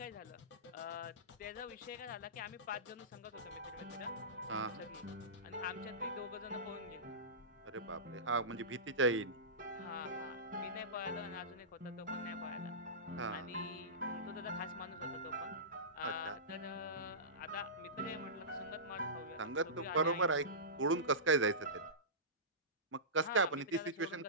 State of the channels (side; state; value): both; normal; correlation -0.20